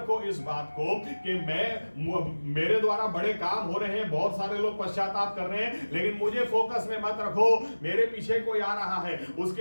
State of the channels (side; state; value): both; inverted; correlation -1.00